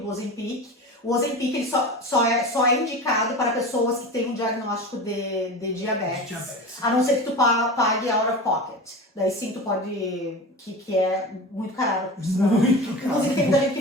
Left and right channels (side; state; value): both; normal; correlation 0.30